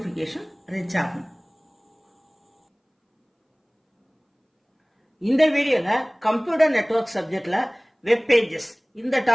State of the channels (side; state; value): both; identical; correlation 1.00